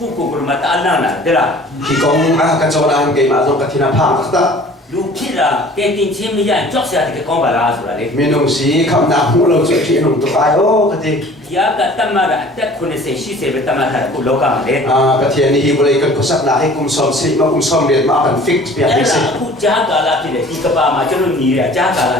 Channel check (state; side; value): normal; both; correlation 0.48